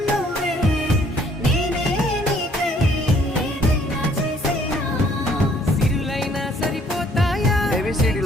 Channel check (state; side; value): normal; both; correlation 0.62